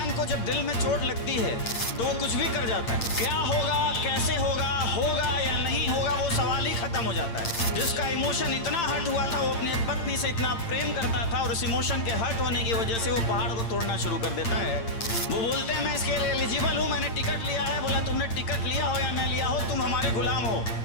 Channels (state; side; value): late; right; 8.8 ms